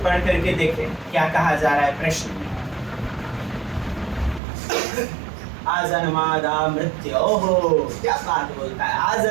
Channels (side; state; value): left; drops out; at 4.4 s